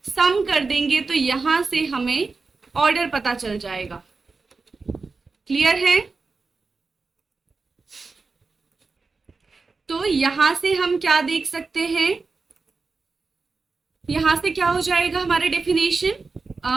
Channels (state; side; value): quieter; left; 4.2 dB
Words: सम कर देंगे तो यहां से हमें ऑर्डर पता चल जाएगा। क्लियर है? तो यहां से हम क्या देख सकते हैं, यहां से क्या हो जाएगा हमारे definition,